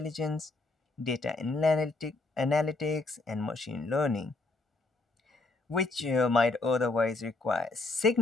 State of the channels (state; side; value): quieter; right; 3.3 dB